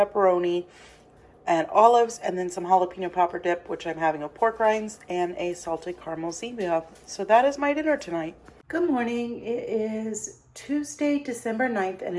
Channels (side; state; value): both; identical; correlation 1.00